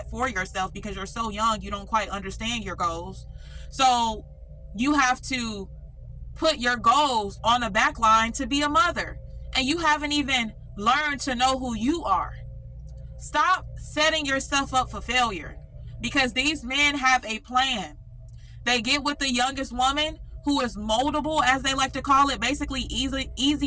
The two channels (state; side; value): identical; both; correlation 1.00